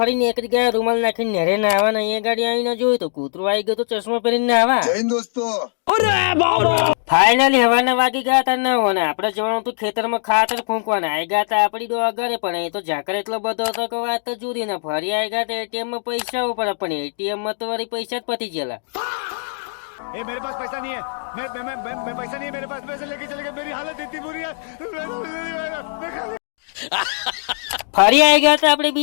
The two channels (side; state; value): right; silent; digital silence